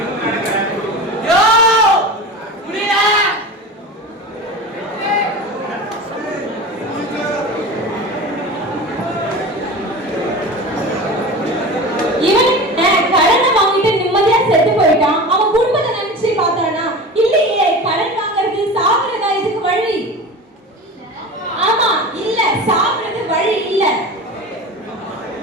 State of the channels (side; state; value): both; normal; correlation 0.32